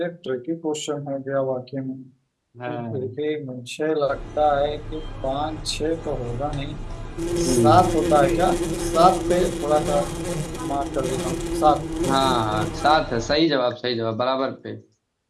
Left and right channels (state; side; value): identical; both; correlation 1.00